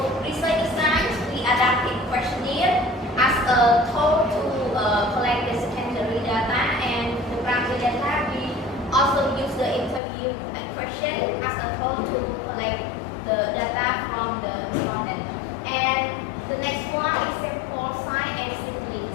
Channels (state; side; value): drops out; right; at 10.0 s